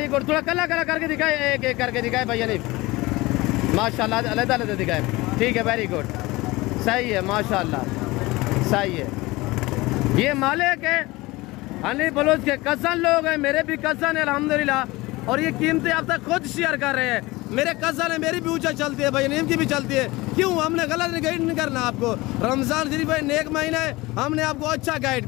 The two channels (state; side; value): quieter; right; 21.1 dB